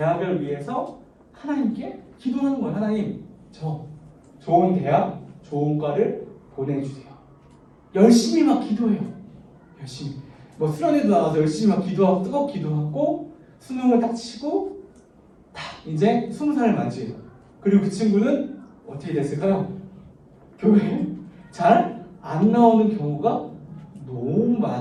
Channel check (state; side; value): identical; both; correlation 1.00